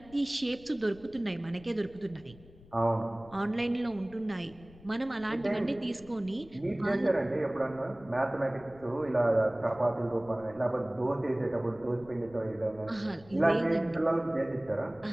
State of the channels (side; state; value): left; noise; rumble, 22 dB below the sound